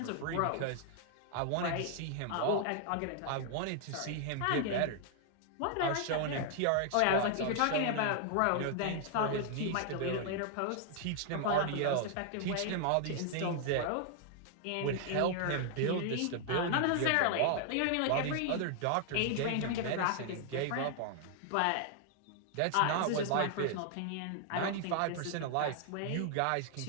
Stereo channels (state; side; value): different; both; correlation 0.00